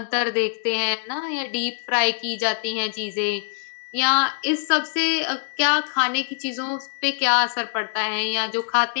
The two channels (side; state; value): right; silent; digital silence